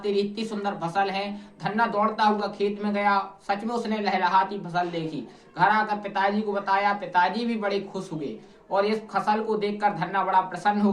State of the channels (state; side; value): identical; both; correlation 1.00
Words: तेरी इतनी सुंदर फसल है। धन्ना दौड़ता हुआ खेत में गया, सच में उसने लहलहाती फसल देखी। घर आकर पिताजी को बताया, पिताजी भी बड़े खुश हुए और इस फसल को देखकर धन्ना बड़ा प्रसन्न हो